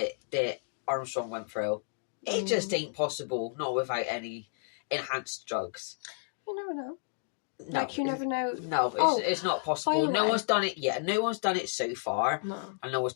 that Armstrong went through. It just ain't possible, not without any enhanced drugs. You never know. No, Like, you never know. No, it's not possible. No one's done it yet. No one's done it so far. No. And no one's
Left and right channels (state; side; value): silent; right; digital silence